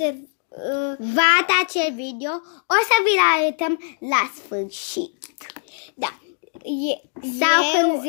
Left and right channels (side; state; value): right; silent; digital silence